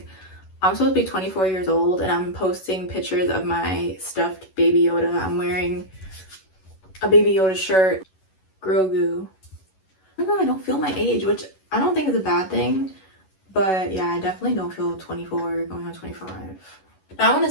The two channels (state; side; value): late; right; 11 ms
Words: I'm supposed to be 24 years old and I'm posting pictures of my stuffed Baby Yoda. I'm wearing a Baby Yoda shirt. Grogu. I don't know, I don't feel my age, which I don't think is a bad thing. But yeah, I definitely don't feel 24 going on 25. Now, I want